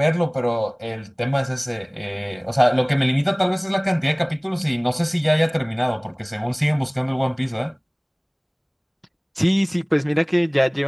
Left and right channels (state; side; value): identical; both; correlation 1.00